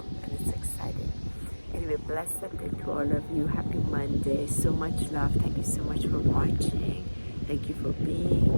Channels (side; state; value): both; inverted; correlation -1.00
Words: and it's exciting. Anyway, blessed day to all of you. Happy Monday. So much love. Thank you so much for watching. Thank you for